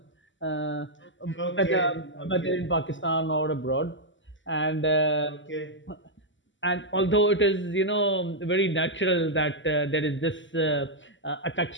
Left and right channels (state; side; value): late; right; 0.54 ms